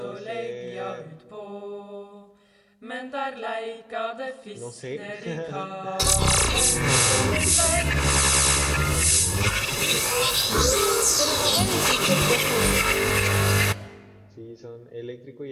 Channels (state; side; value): identical; both; correlation 1.00